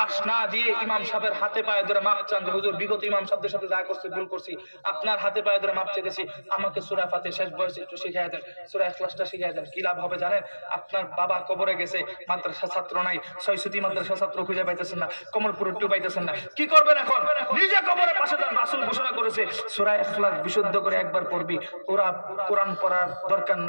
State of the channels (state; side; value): inverted; both; correlation -1.00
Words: না দিয়ে ইমাম সাহেবের হাতে পায়ে ধরে মাপ চান যে হুজুর বিগত ইমাম সাহেবদের সাথে যা করছি ভুল করছি, আপনার হাতে পায়ে ধরে মাপ চেয়েছি, আমাকে সূরা ফাতিহা শেষ বয়সে একটু শিখিয়ে দেন, সূরা ইখলাসটা শিখিয়ে দেন। কি লাভ হবে জানেন? আপনার বাবা কবরে গেছে, মাদ্রাসা ছাত্র নাই, ছয়সুতি মাদ্রাসা ছাত্র খুঁজে পাইতেছেন না, কমলপুর একটু পাইতেছেন না, কি করবেন এখন? নিজে কবরের পাশে যান। রাসূল ঘোষণা করেছে সূরা ইখলাস বিশুদ্ধ করে একবার পড়বি, কোরআন পড়ার দরকার